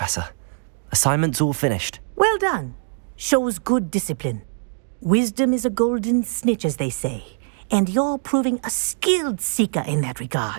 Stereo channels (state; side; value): silent; left; digital silence